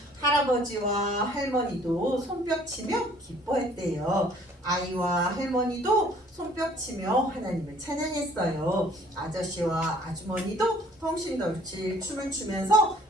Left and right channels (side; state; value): both; normal; correlation 0.56